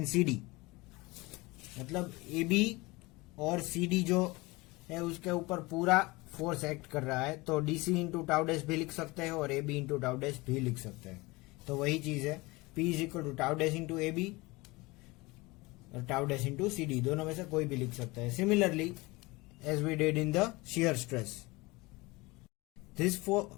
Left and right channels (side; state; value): right; quieter; 23.2 dB